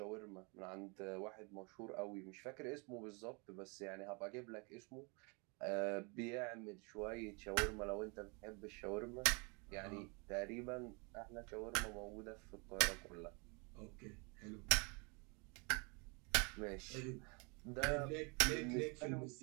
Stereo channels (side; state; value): left; quieter; 31.9 dB